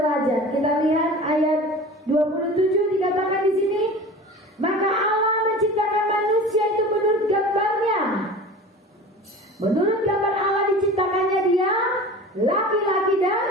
Kita lihat ayat 27 dikatakan di sini, maka Allah menciptakan manusia itu menurut gambarnya. Menurut gambar Allah diciptakannya dia, laki-laki dan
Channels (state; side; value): normal; both; correlation 0.37